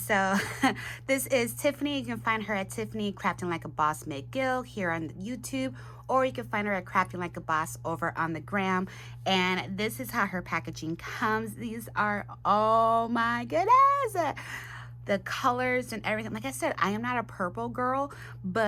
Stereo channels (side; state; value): both; identical; correlation 1.00